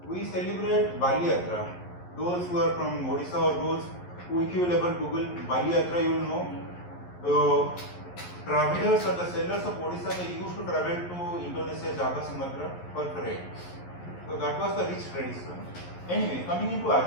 we celebrate Bali Yatra. Those who are from Odisha or those who, if you will ever Google Bali Yatra, you will know the travelers or the sellers of Odisha, they used to travel to Indonesia, Java, Sumatra for trade. So that was the rich tradition. Anyway, coming into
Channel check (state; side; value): late; right; 11 ms